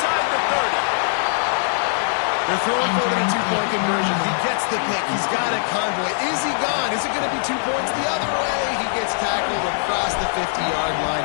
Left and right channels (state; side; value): silent; right; digital silence